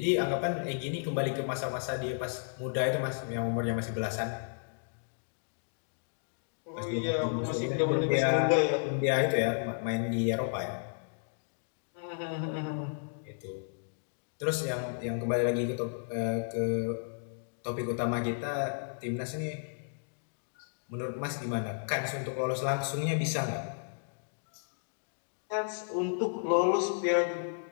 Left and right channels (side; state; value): right; silent; digital silence